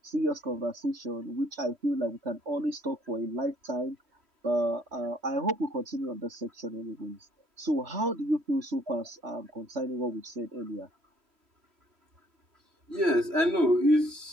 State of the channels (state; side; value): late; left; 3.0 ms